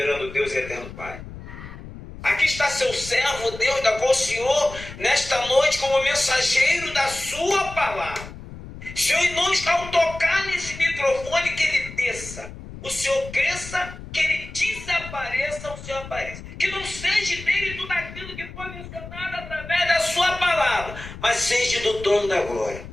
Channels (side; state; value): left; noise; rumble, 13 dB below the sound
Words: Deus e eterno Pai. Aqui está seu servo, Deus, da qual o Senhor, nesta noite, como mensageiro da sua palavra. Senhor, em nome está ao tocar nesse microfone, que ele desça. O Senhor cresça, que ele desapareça, o Senhor apareça. Que não seja dele tudo aquilo que foi mencionado através da sua palavra, mas seja do trono da glória.